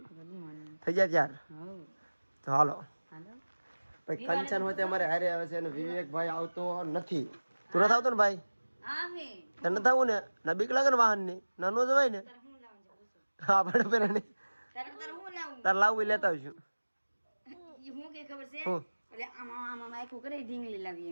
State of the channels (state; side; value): inverted; both; correlation -1.00